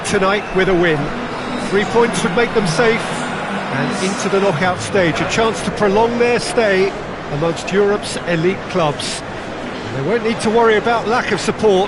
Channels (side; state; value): both; identical; correlation 1.00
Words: tonight with a win. 3 points would make them safe, and into the knockout stage, a chance to prolong their stay amongst Europe's elite clubs. They won't need to worry about lack of